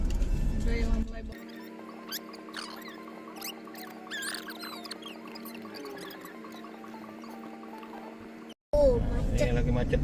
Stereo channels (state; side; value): identical; both; correlation 1.00